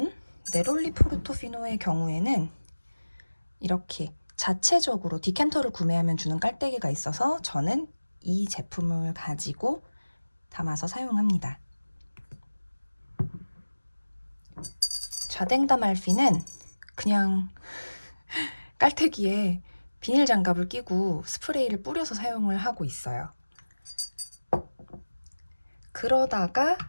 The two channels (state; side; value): inverted; both; correlation -1.00